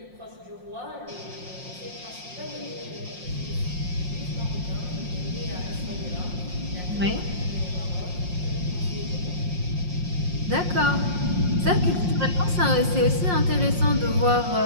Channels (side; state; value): left; late; 5.6 ms